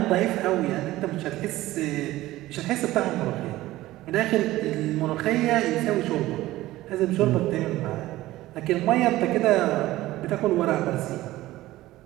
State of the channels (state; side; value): quieter; left; 16.6 dB